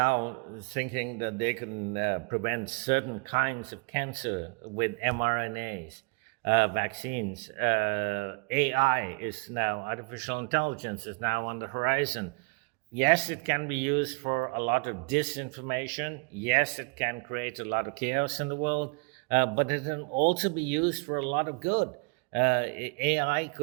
thinking that they can prevent certain kinds of cancer with mRNAs, vaccines. AI is now, artificial intelligence is now on the horizon. Yes, it can be used for a lot of disinformation. Yes, it can create a lot of chaos in the world. But it can also be used for a lot of good. AI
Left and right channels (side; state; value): left; quieter; 32.1 dB